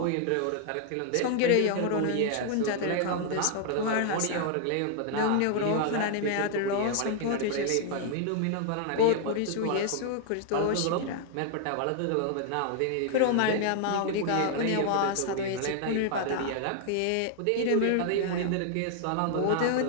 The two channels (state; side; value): different; both; correlation 0.00